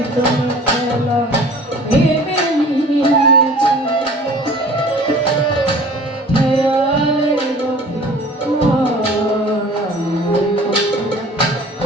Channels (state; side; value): normal; both; correlation 0.46